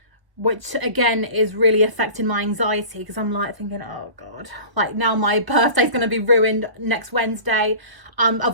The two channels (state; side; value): late; left; 1.2 ms